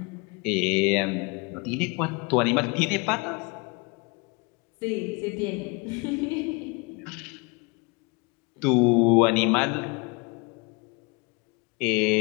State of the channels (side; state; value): right; quieter; 28.9 dB